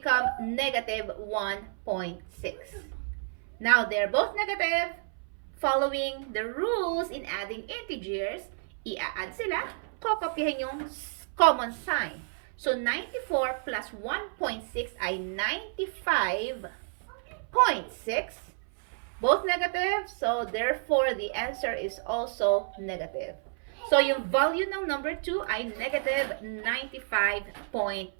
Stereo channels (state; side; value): silent; left; 58 dB below the other